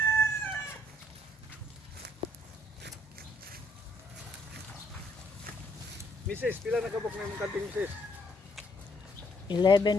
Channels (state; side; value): normal; both; correlation 0.68